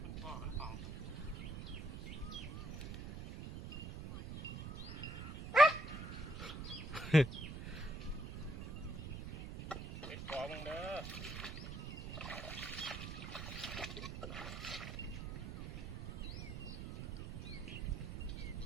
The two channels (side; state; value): right; noise; rumble, 7 dB below the sound